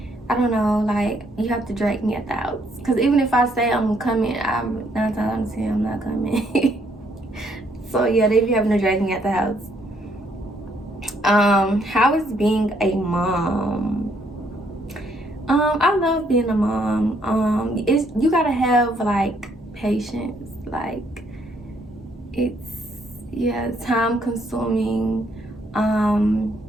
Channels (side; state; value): both; normal; correlation 0.70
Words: I don't know, like you have to drag me at the house. Cause even if I say I'm coming, I'm 9 times out of 10 I'm not coming. So yeah, they be having to drag me at the house. How is being a mom? I love being a mom. You gotta have like patience. Like, it's time consuming.